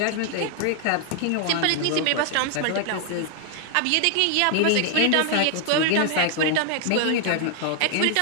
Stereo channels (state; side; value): different; both; correlation 0.00